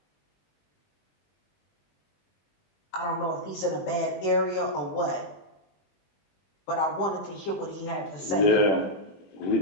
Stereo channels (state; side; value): late; right; 20 ms